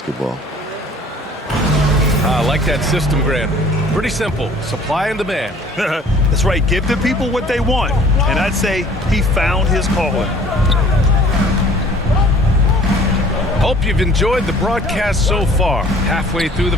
I like that system, Grant. Pretty simple. Supply and demand. That's right. Give the people what they want. And I'd say he found his calling. Hope you've enjoyed the broadcast so far. Halfway through the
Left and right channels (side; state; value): both; normal; correlation 0.52